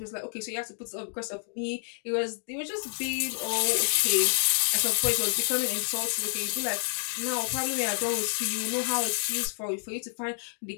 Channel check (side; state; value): right; silent; digital silence